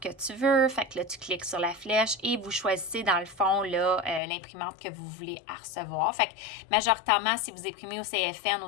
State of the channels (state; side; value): drops out; right; at 4.2 s